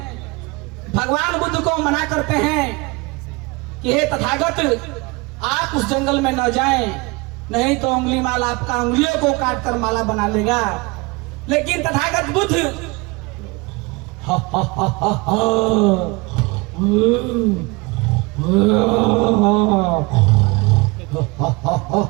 भगवान बुद्ध को मना करते हैं कि हे तथागत, आप उस जंगल में न जाएं, नहीं तो उंगली माला आपका उंगलियों को काट कर माला बना लेगा। लेकिन तथागत बुद्ध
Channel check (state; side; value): quieter; left; 25.8 dB